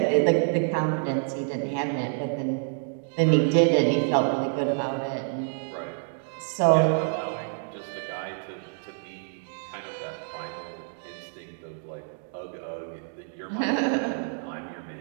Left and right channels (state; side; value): silent; left; digital silence